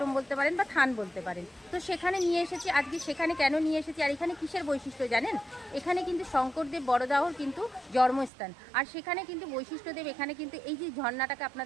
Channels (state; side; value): drops out; left; at 8.3 s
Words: বলতে পারেন, বা থান বলতে পারেন। তো সেখানে নিয়ে এসেছি আজকে। সেখানে কেন নিয়ে এসেছি আর এখানে কিসের বৈশিষ্ট্য জানেন? এখানে কিন্তু শঙ্করদেব বড়দাহর কিন্তু জন্মস্থান। আর সেখানে কিন্তু বৈশিষ্ট্যদেব এখানে কিন্তু এই যে ঝর্ণাটাকে